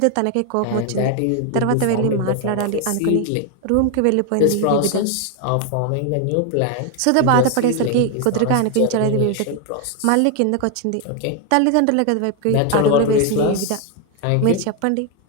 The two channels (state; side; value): different; both; correlation 0.01